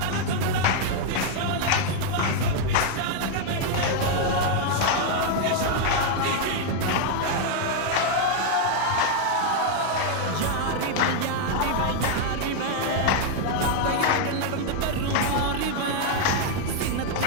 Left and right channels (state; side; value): different; both; correlation 0.00